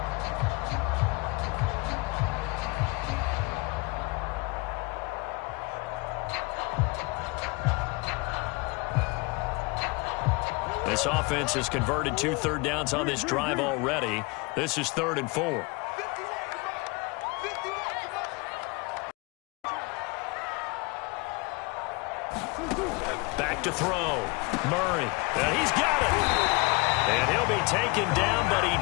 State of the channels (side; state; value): right; quieter; 27.0 dB